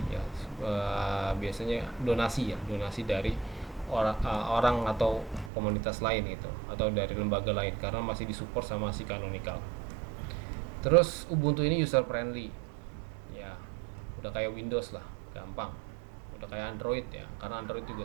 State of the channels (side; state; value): left; drops out; at 5.5 s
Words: ya. Biasanya donasi dari orang atau komunitas lain gitu, atau dari lembaga lain, karena masih disupport sama si Canonical. Terus Ubuntu ini user friendly ya, udah kayak Windows lah, gampang. Udah kayak Android ya, karena Android juga